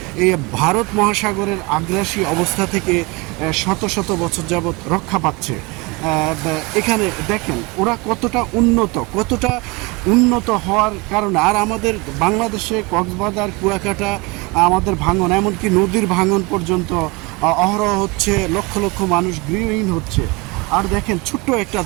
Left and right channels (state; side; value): quieter; left; 25.3 dB